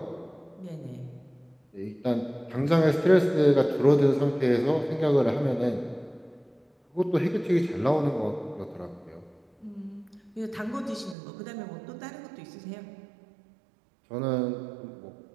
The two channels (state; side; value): drops out; left; at 11.2 s